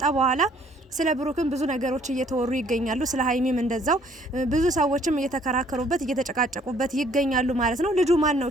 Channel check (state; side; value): normal; both; correlation 0.61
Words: በኋላ ስለ ብሩክም ብዙ ነገሮች እየተወሩ ይገኛሉ። ስለ ሃይሚም እንደዛው ብዙ ሰዎችም እየተከራከሩበት እየተጨቃጨቁበት ይገኛሉ ማለት ነው። ልጁ ማን ነው?